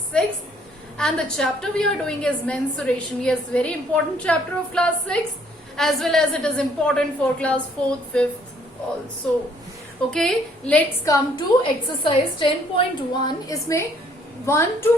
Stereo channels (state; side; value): normal; both; correlation 0.64